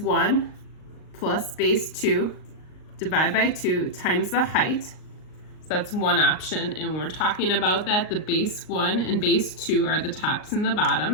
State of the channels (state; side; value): late; right; 38 ms